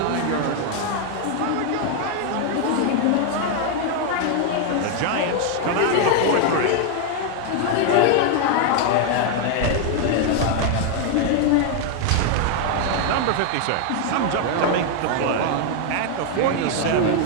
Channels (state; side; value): different; both; correlation 0.00